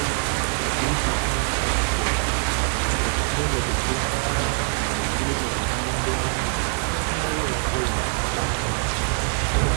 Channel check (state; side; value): quieter; left; 39.7 dB